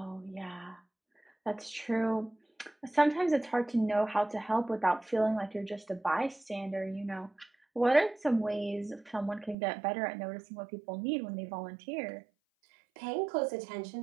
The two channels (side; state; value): left; drops out; at 9.6 s